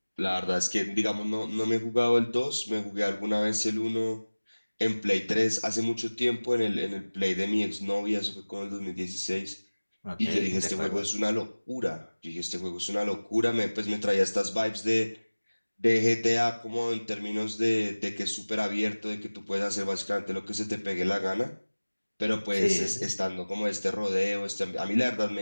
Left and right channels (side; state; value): both; inverted; correlation -1.00